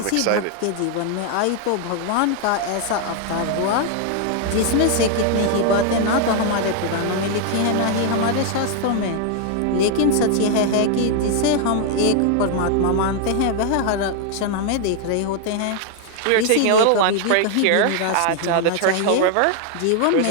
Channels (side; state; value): both; different; correlation 0.00